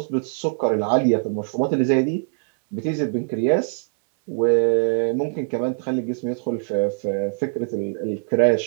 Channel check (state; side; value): silent; left; 64 dB below the other